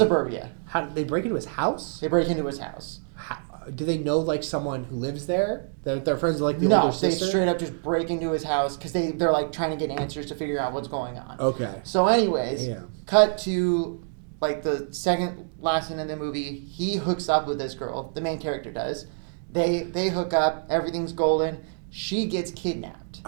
How they break into his house? They break into his house. Do they know like someone who lives there? Their friends are like the no, older sister? they straight up just break into his house because they're like trying to get answers to figure out what's going on. Okay. So, anyways, Yeah. cut to like the second last scene in the movie. He hooks up with this girl. The main character does. They hook up. Everything's golden. She gets kidnapped.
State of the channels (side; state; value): left; silent; digital silence